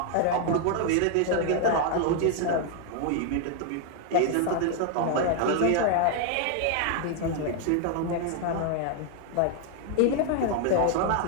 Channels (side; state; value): both; different; correlation 0.00